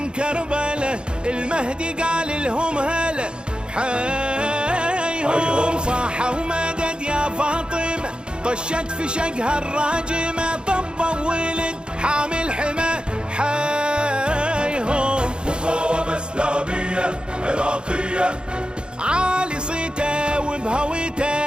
كربلة، المهدي قال لهم هلا حيهم، صاحوا مدد يا فاطمة، طشت في شقها الراجمة، طب ولد حامل حمى حيهم، مقاومة إسلامية عراقية، عالي صيته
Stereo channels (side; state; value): left; late; 0.052 ms